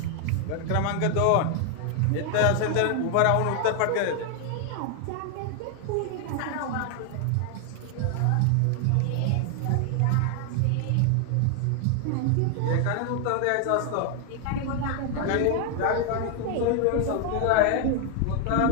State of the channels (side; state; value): both; different; correlation 0.00